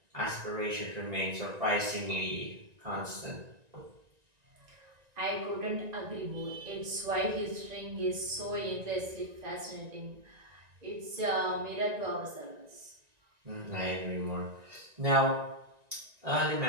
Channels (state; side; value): late; left; 1.9 ms